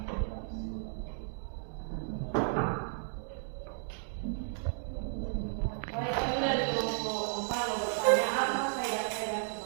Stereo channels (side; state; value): left; silent; digital silence